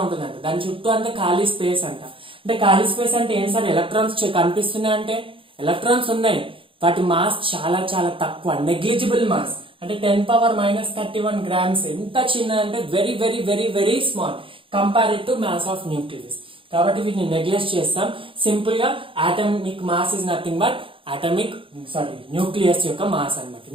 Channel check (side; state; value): left; late; 0.25 ms